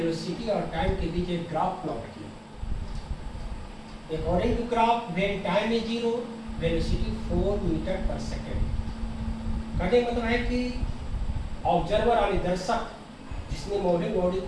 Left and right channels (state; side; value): identical; both; correlation 1.00